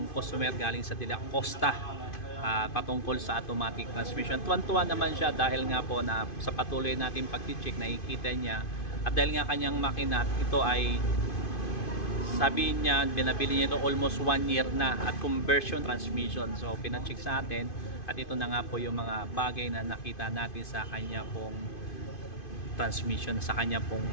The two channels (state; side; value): late; right; 2.5 ms